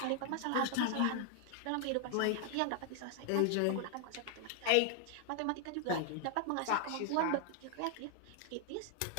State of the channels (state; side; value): different; both; correlation 0.00